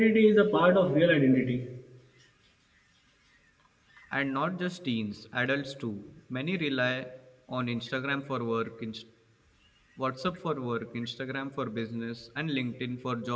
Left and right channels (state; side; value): identical; both; correlation 1.00